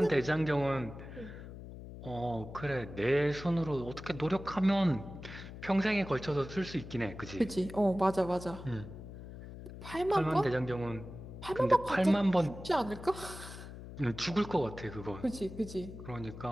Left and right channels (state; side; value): noise; left; hum, 12 dB below the sound